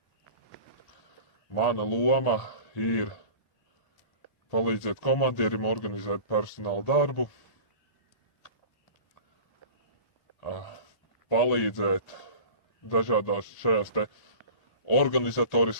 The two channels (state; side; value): late; right; 1.8 ms